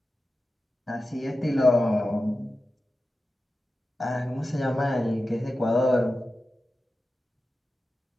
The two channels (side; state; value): both; normal; correlation 0.93